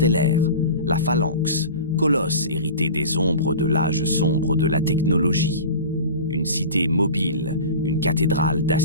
la Phalanx, colosse hérité des ombres de l'âge sombre de la technologie. Une cité mobile, une cathédrale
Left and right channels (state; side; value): inverted; both; correlation -0.35